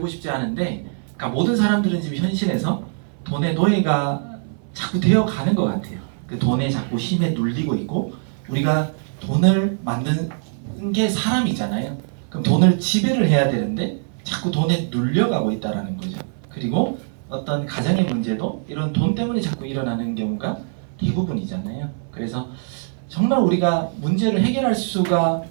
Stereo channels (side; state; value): left; silent; 61 dB below the other